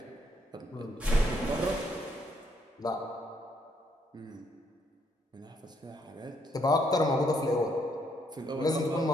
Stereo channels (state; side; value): normal; both; correlation 0.72